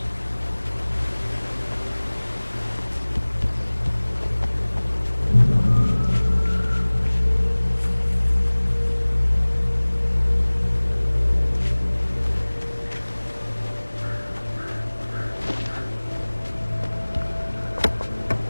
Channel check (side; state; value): both; inverted; correlation -1.00